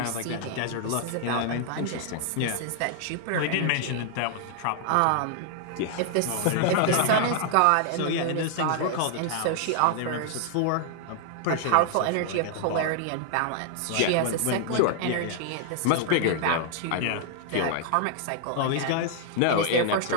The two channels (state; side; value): different; both; correlation 0.00